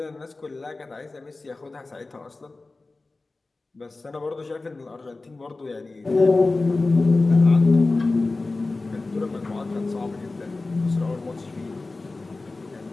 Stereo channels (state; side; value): quieter; right; 3.4 dB